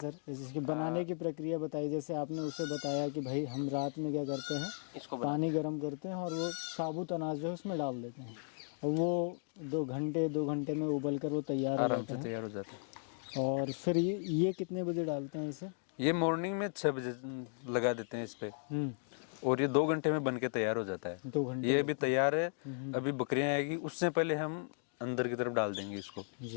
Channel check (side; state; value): right; silent; digital silence